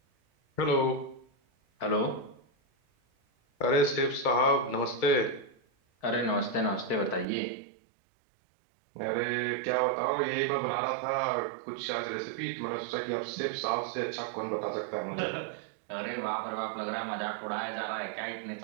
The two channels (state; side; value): drops out; left; at 7.2 s